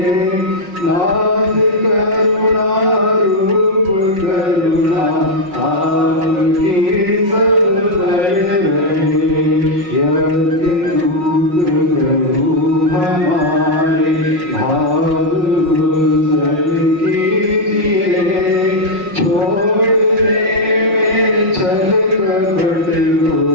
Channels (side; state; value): left; late; 5.5 ms